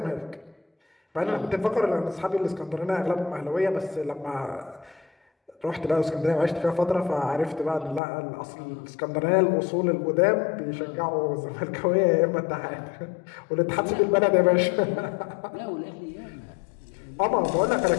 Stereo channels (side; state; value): right; drops out; at 8.0 s